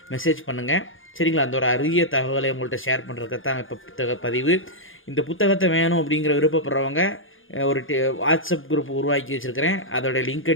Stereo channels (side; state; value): right; late; 0.58 ms